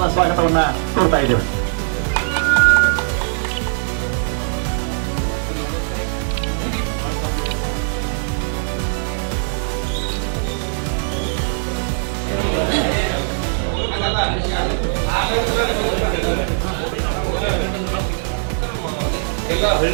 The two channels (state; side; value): silent; left; digital silence